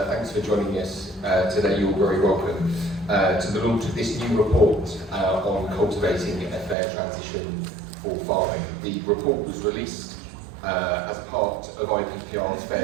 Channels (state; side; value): drops out; left; at 6.8 s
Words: for joining us today. You're very welcome to the launch of this new report on cultivating a fair transition for farming. The report was released as part of IPPR's